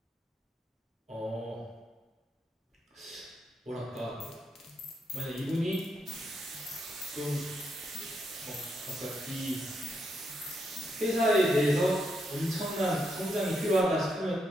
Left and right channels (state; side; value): normal; both; correlation 0.80